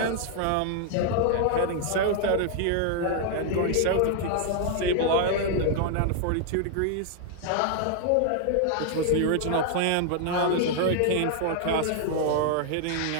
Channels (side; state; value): both; different; correlation 0.00